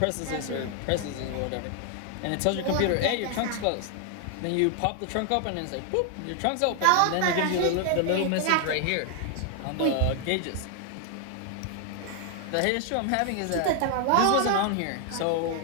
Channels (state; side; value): different; both; correlation 0.00